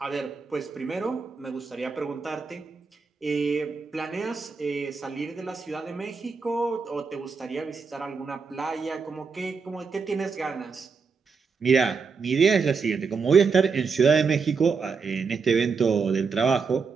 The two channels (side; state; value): left; quieter; 5.2 dB